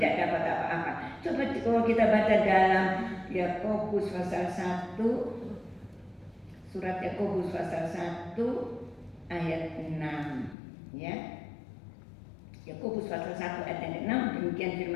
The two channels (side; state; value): right; drops out; at 10.6 s